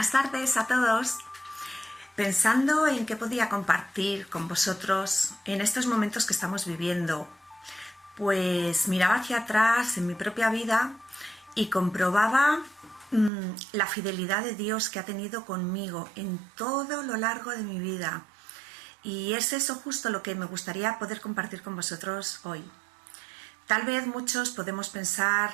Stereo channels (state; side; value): drops out; left; at 13.3 s